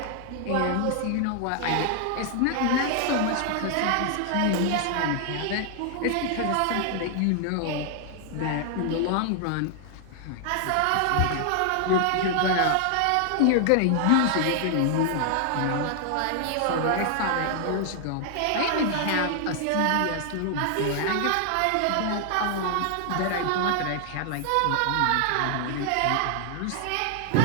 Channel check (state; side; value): different; both; correlation 0.00